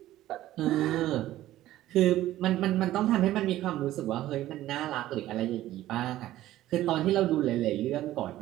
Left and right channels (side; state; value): left; quieter; 14.5 dB